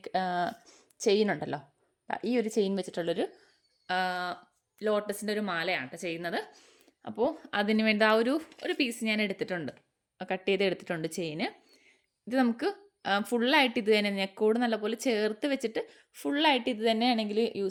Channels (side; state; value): both; identical; correlation 1.00